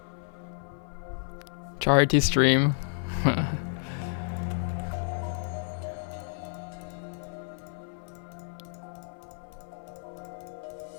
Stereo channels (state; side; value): silent; right; digital silence